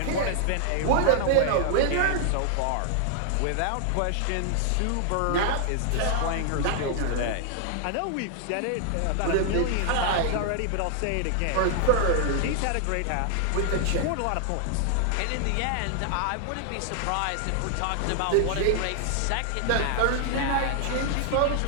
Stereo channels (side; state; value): both; different; correlation 0.00